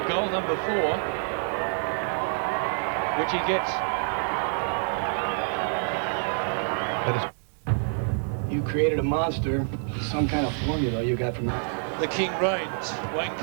goal number 4, which he gets. You created a monster, some kind of formula you got from that. The king reigns. Wayne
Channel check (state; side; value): silent; left; 60 dB below the other